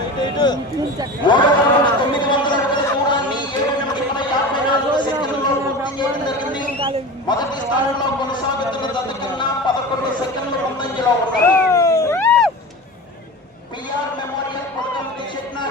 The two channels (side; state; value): both; normal; correlation 0.31